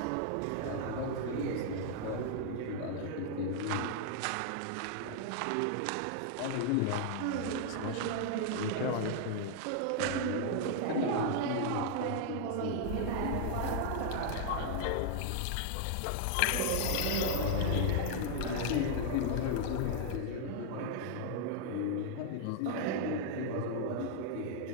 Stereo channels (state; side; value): different; both; correlation 0.00